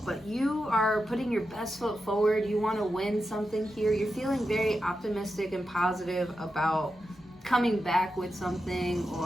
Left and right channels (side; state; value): both; normal; correlation 0.89